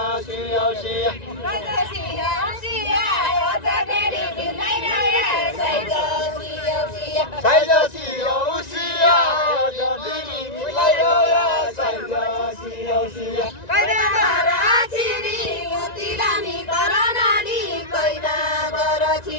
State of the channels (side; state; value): right; late; 1.9 ms